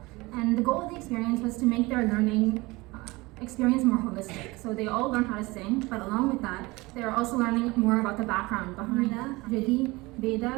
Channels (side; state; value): left; quieter; 22.5 dB